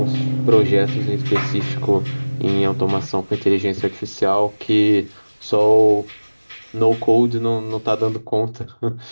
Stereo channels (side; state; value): both; inverted; correlation -1.00